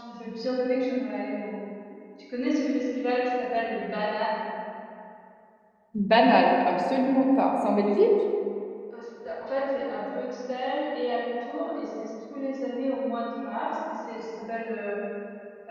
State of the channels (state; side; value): identical; both; correlation 1.00